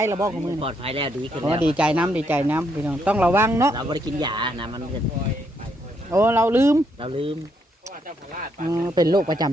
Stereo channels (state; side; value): normal; both; correlation 0.75